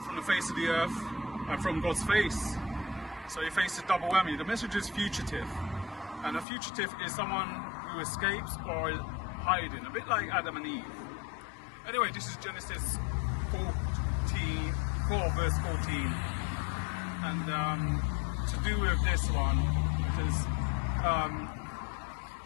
from the face of the earth and from God's face. So he faced a double whammy. The message is fugitive, and a fugitive is someone who escapes or is hiding, a bit like Adam and Eve. Anyway, this is Genesis 4 verse 14, and to do with this one, because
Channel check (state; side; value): drops out; right; at 6.5 s